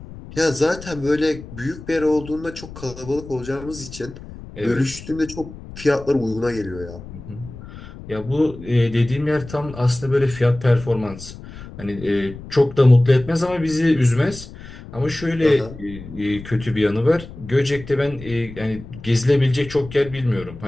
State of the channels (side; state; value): left; noise; rumble, 15 dB below the sound